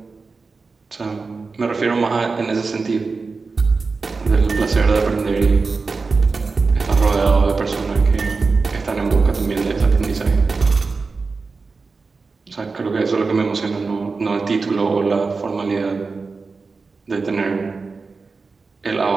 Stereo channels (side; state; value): left; quieter; 4.3 dB